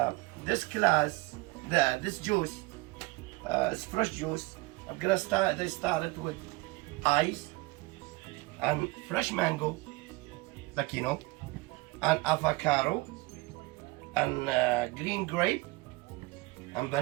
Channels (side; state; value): left; quieter; 23.3 dB